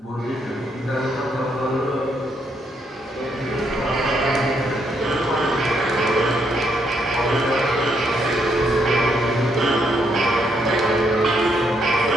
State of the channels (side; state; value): both; normal; correlation 0.75